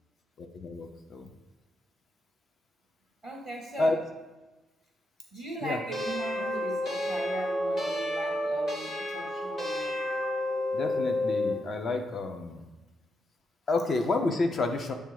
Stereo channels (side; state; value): both; normal; correlation 0.83